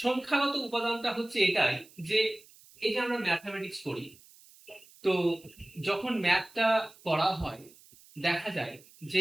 উপাদানটা হচ্ছে এটাই যে এই যে আমরা ম্যাথমেটিক্স করি, তো যখন ম্যাথটা করা হয় দেখা যায়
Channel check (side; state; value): right; noise; hiss, 25 dB below the sound